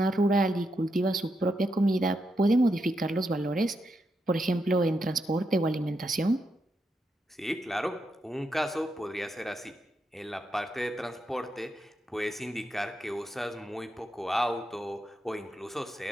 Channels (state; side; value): normal; both; correlation 0.83